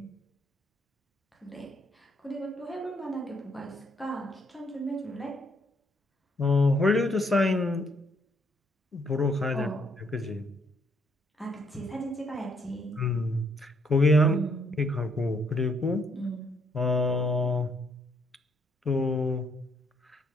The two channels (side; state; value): both; normal; correlation 0.70